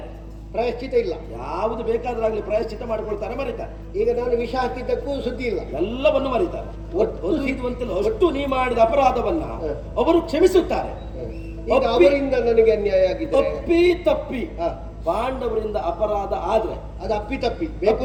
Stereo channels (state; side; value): identical; both; correlation 1.00